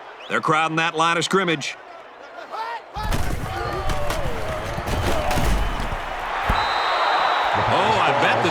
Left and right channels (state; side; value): identical; both; correlation 1.00